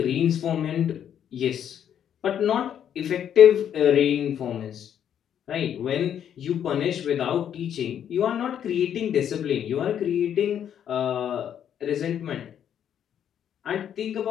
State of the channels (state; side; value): quieter; right; 9.4 dB